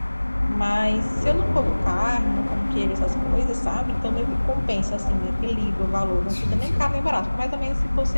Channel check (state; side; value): inverted; both; correlation -1.00